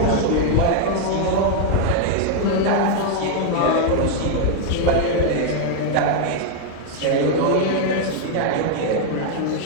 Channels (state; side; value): different; both; correlation 0.00